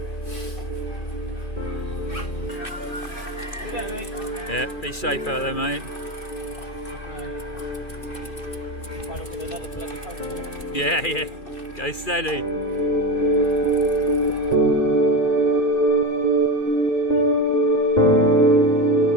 Yeah, be safe out there, mate. Yeah, yeah. Go steady.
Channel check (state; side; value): late; right; 2.4 ms